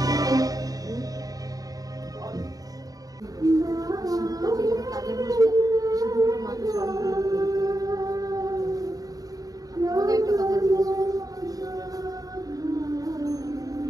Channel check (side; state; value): left; late; 0.18 ms